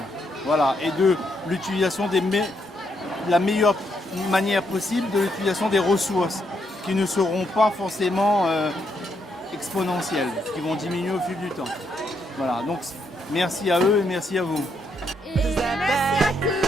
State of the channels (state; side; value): normal; both; correlation 0.77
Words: Voilà, et de l'utilisation la meilleure manière possible de l'utilisation des ressources qui ne seront pas forcément exponentielles, qui vont diminuer au fil du temps. Voilà, donc merci à eux et merci à vous. Et merci à